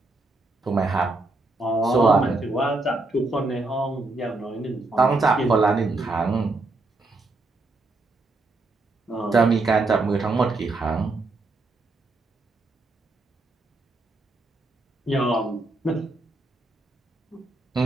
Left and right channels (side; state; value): left; quieter; 3.1 dB